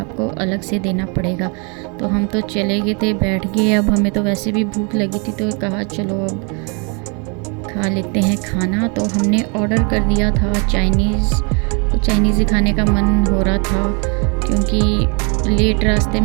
अलग से देना पड़ेगा। तो हम तो चले गए थे, बैठ गए, अब हमें तो वैसे भी भूख लगी थी तो कहा चलो अब खा लेते हैं खाना। तो हमने ऑर्डर कर दिया था चाइनीज़, तो चाइनीज़ ही खाने का मन हो रहा था क्योंकि लेट रास्ते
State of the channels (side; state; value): left; quieter; 34.5 dB